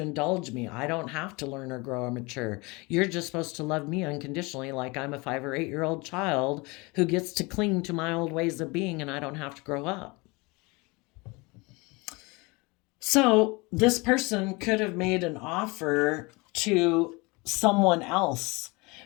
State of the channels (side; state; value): right; quieter; 26.0 dB